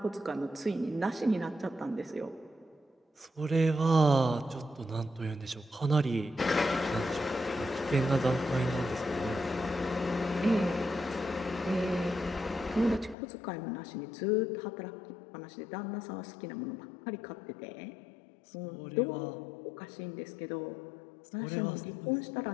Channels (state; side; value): drops out; right; at 13.2 s